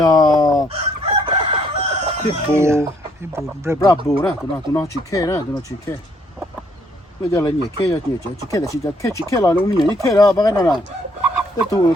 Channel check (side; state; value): both; normal; correlation 0.68